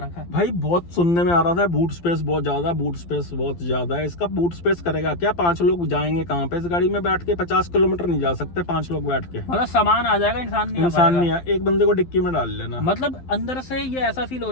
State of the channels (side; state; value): right; late; 12 ms